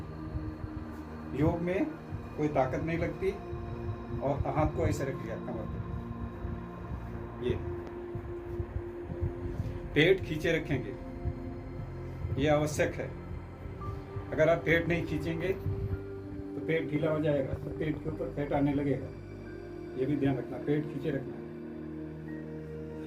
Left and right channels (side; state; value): both; identical; correlation 1.00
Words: योग में कोई ताकत नहीं लगती। और हाथ को ऐसे रख लिया कमर पे, ये पेट खींचे रखेंगे, ये आवश्यक है। अगर आप पेट नहीं खींचेंगे तो पेट ढीला हो जाएगा, तो पेट के ऊपर फैट आने लगेगा। ये भी ध्यान रखना, पेट खींचे रखना।